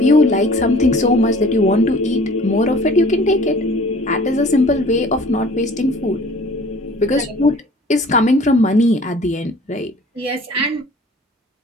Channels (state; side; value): normal; both; correlation 0.49